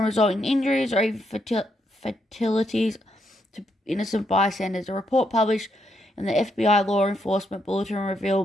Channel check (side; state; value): both; normal; correlation 0.78